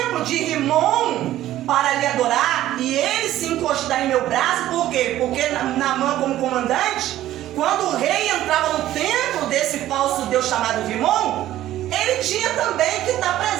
de Rimon para lhe adorar, e ele se encostar em meu braço, por quê? Porque Naamã, como comandante, quando o rei entrava no templo desse falso deus chamado Rimon, ele tinha também que estar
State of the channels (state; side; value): quieter; left; 13.7 dB